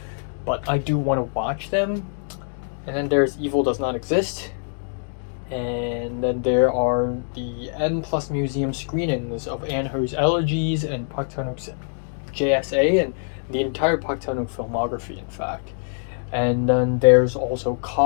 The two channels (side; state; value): right; silent; digital silence